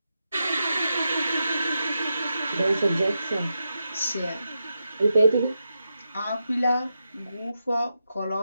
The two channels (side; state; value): both; inverted; correlation -0.87